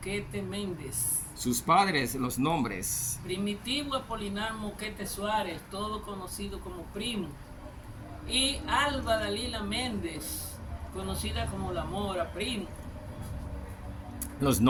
Méndez. Sus padres, los nombres. Primitivo Apolinar Moquete Suárez, todo conocido como Primo. Y Alba Dalila Méndez, conocida como La Mora, Primo. Los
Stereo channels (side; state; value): both; identical; correlation 1.00